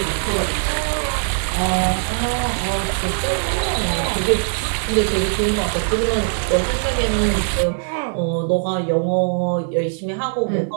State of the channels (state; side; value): silent; left; digital silence